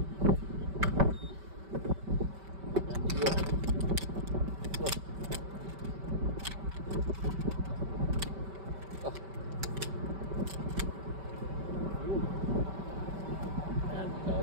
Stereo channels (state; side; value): late; left; 5.2 ms